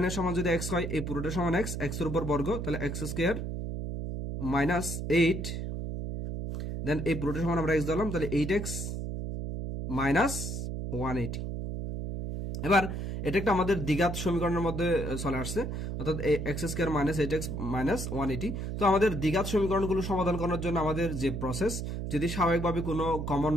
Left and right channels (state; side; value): noise; right; hum, 4 dB below the sound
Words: এর সমান যদি x হয়, এই পুরোটা সমান x, x এর উপর বর্গ, তাহলে x স্কয়ার মাইনাস 8, দেন এই পুরোটা সমান আমরা x ধরলাম, তাহলে 8x মাইনাস 180। এবার এটা একটা আমাদের দ্বিঘাত সমীকরণের মধ্যে চলে আসছে, অর্থাৎ x square minus 8x minus 180। তো আমাদের দ্বিঘাত সমীকরণগুলো সমাধান করার জন্য আমাদের যে প্রসেস, যদি স্বাভাবিকভাবে কোনো কমন